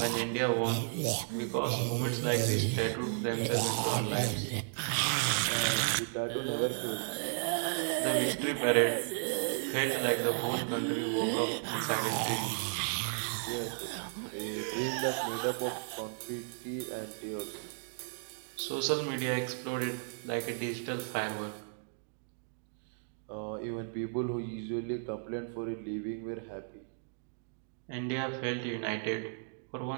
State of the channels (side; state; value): left; silent; digital silence